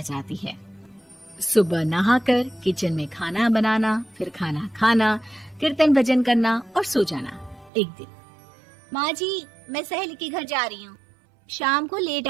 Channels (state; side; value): drops out; left; at 7.7 s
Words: जाती है। सुबह नहाकर किचन में खाना बनाना, फिर खाना खाना, कीर्तन भजन करना और सो जाना। एक दिन, माँ जी मैं सहेली के घर जा रही हूँ, शाम को लेट